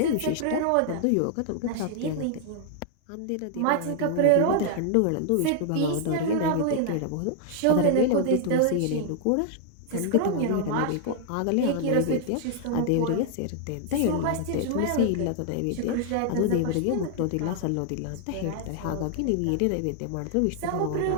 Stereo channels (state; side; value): different; both; correlation 0.00